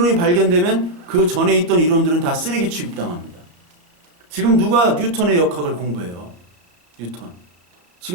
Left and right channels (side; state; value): left; late; 34 ms